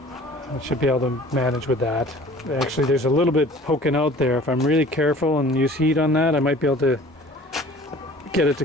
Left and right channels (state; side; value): normal; both; correlation 0.48